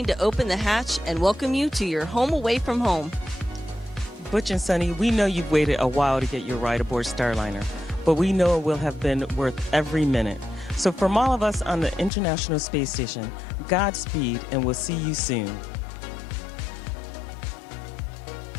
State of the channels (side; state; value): right; drops out; at 12.1 s